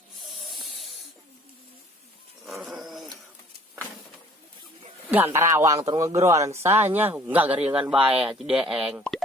Gantar awang terus ngegeroan sanya enggak garingan bae cideeng.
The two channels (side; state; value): both; normal; correlation 0.54